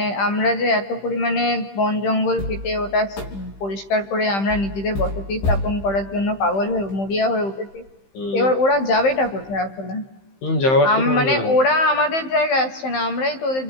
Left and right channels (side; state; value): right; late; 15 ms